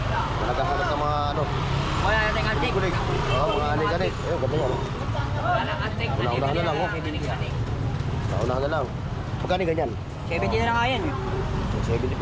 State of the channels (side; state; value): both; identical; correlation 1.00